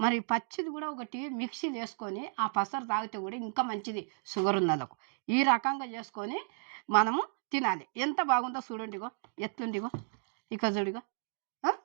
మరి పచ్చిది కూడా ఒకటి మిక్సీలు వేసుకొని ఆ పసరు తాగితే కూడా ఇంకా మంచిది షుగర్ ఉన్న వాళ్ళకు. ఈ రకంగా చేసుకొని మనము తినాలి. ఎంత బాగుందో చూడండి. ఇగో ఎట్లుండిగో ఇక చూడిగో. ఆ?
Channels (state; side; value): silent; left; digital silence